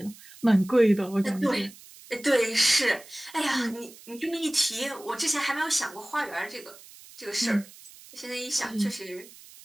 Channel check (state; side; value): noise; right; hiss, 20 dB below the sound